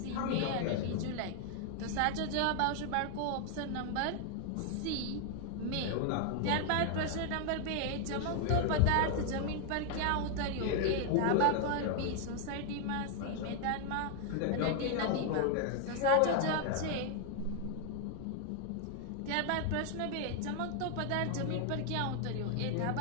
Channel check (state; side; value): different; both; correlation 0.00